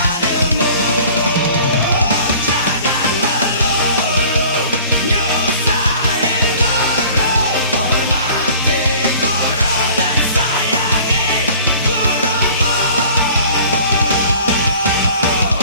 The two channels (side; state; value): both; inverted; correlation -0.48